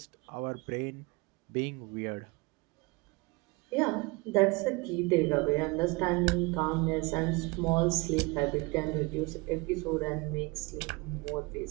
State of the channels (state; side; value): quieter; left; 26.1 dB